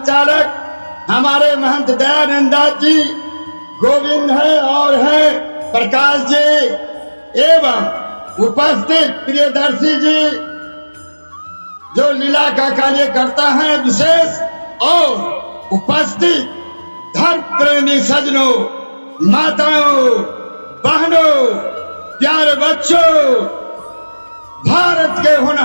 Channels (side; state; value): both; inverted; correlation -1.00